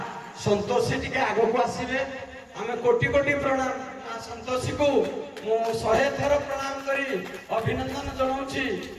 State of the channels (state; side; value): identical; both; correlation 1.00